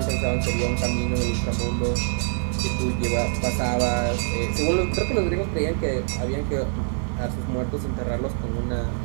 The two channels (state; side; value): silent; left; 57 dB below the other